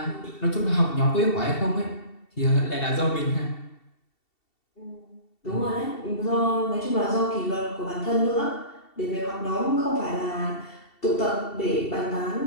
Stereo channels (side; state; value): right; late; 2.7 ms